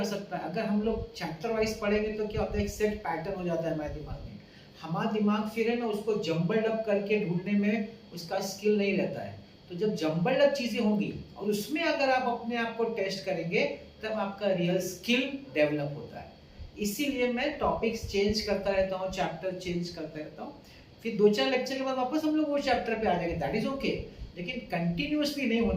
सकता है। अगर हम लोग चैप्टर वाइज पढ़ेंगे तो क्या होता है, एक सेट पैटर्न हो जाता है हमारे दिमाग में। हमारा दिमाग फिर है ना उसको जम्बल्ड अप करके ढूंढने में उसका स्किल नहीं रहता है। तो जब जम्बल्ड अप चीजें होंगी और उसमें अगर आप अपने आप को टेस्ट करेंगे तब आपका रियल स्किल डेवलप होता है। इसीलिए मैं टॉपिक्स चेंज करता रहता हूँ, चैप्टर चेंज करता रहता हूँ। फिर 2-4 लेक्चर के बाद वापस हम लोग वो चैप्टर पे आ जाएंगे, दैट इज ओके। लेकिन कंटिन्यूअसली नहीं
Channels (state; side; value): identical; both; correlation 1.00